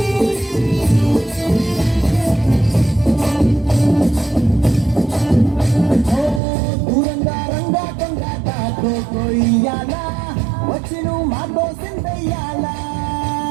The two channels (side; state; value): left; drops out; at 6.4 s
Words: వచ్చిను మాతో సిందయ్యాలా